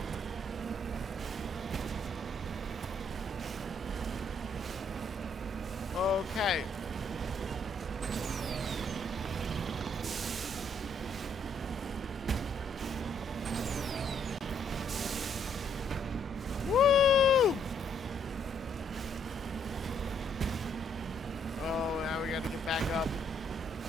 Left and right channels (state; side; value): normal; both; correlation 0.69